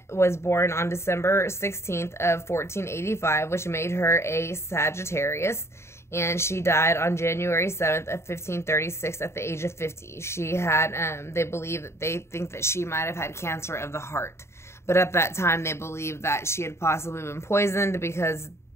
was born on December 16th of 1485, which made her a Sagittarius, and she died on January 7th of 1536 at the age of 50. She had, they think that she might have had cancer of the heart, but at that time they believed that she had possibly been poisoned because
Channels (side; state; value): right; late; 0.13 ms